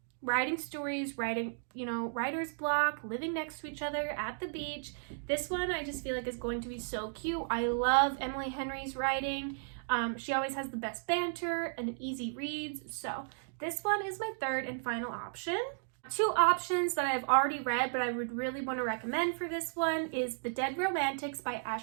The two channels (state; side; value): silent; left; digital silence